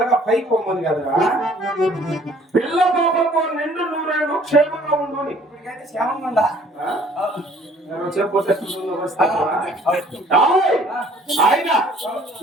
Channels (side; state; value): both; normal; correlation 0.56